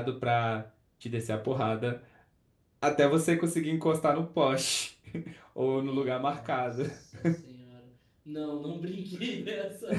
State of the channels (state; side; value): identical; both; correlation 1.00